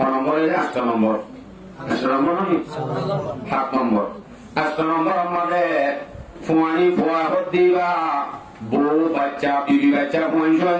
নম্বর 7 নম্বর 8 নম্বর আমাদের ফুয়ানি ফুয়া দিবা বউ বাচ্চা বিবি বাচ্চা পঞ্চম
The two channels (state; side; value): identical; both; correlation 1.00